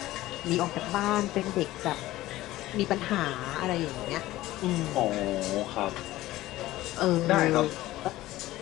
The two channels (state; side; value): quieter; right; 16.4 dB